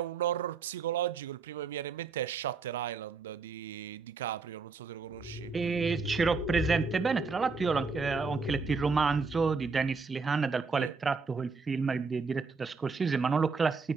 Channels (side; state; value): left; quieter; 4.6 dB